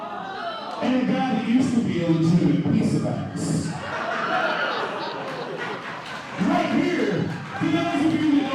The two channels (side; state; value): both; identical; correlation 1.00